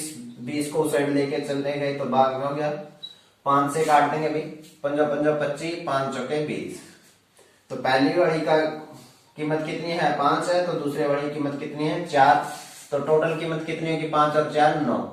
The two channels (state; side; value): identical; both; correlation 1.00